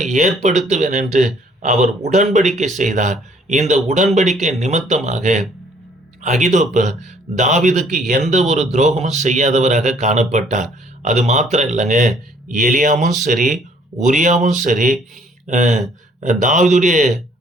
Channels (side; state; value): both; normal; correlation 0.61